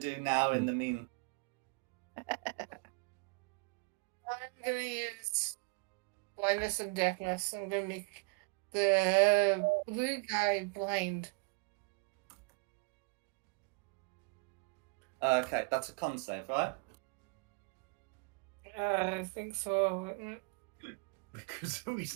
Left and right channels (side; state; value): left; quieter; 29.8 dB